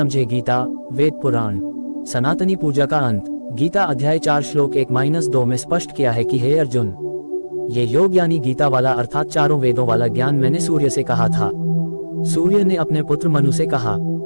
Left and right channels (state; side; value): inverted; both; correlation -1.00